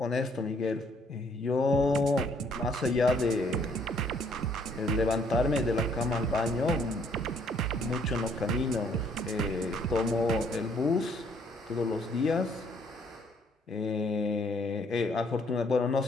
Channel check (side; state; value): both; normal; correlation 0.65